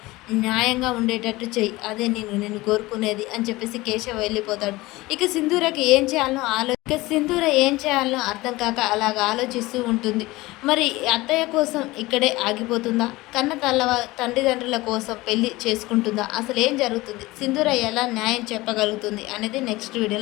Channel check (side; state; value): right; quieter; 20.1 dB